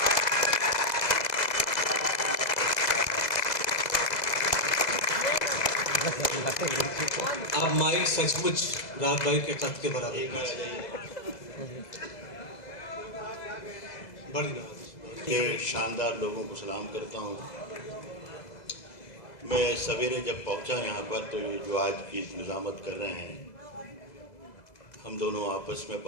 اب مائک سچ مچ رات بھائی کے قد کے برابر کہ شاندار لوگوں کو سلام کرتا ہوں۔ میں سویرے جب پہنچا یہاں پر تو یہ جو آج کی نظامت کر رہے ہیں، ہم دونوں آپس میں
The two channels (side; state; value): right; late; 2.0 ms